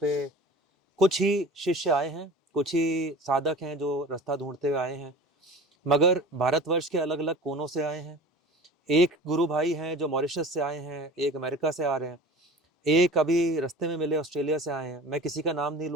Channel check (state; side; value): normal; both; correlation 0.40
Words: कुछ ही शिष्य आए हैं, कुछ ही साधक हैं जो रास्ता ढूंढते हुए आए हैं, मगर भारतवर्ष के अलग अलग कोनों से आए हैं। एक गुरु भाई हैं जो मॉरिशस से आए हैं, एक अमेरिका से आ रहे हैं, एक अभी रास्ते में मिले ऑस्ट्रेलिया से आए हैं। मैं किसी का नाम नहीं